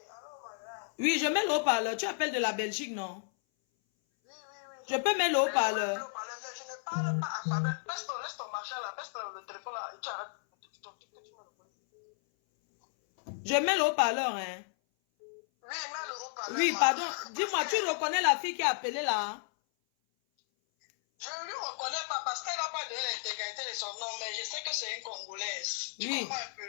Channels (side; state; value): right; silent; 56 dB below the other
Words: allô, madame. Oui, je mets le haut-parleur. Tu appelles de la Belgique, non? Oui. Je peux mettre le haut-parleur. Je ne parle pas à Fabien. Laisse ton machin là, laisse le téléphone là et tu arrêtes. Tu me reconnais. Je mets le haut-parleur, hein. Oui, mets le haut-parleur. Oui, pardon. Dis-moi, tu reconnais la fille qui a appelé là? Je ne lui reconnais pas parce qu'elle n'a pas de l'intégrité de son nom, mais je sais que c'est une Congolaise. Tu Oui. comprends un